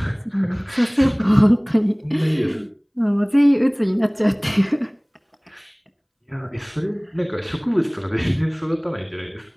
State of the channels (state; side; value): identical; both; correlation 1.00